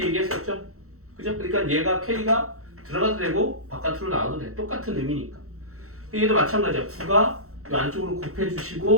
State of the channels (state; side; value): late; left; 0.64 ms